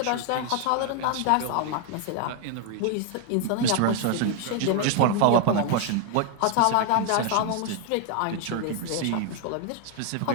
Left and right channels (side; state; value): both; different; correlation 0.01